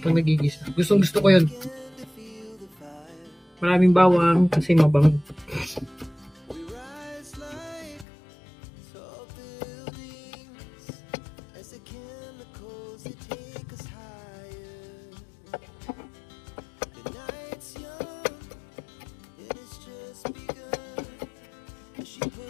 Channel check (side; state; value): right; drops out; at 8.1 s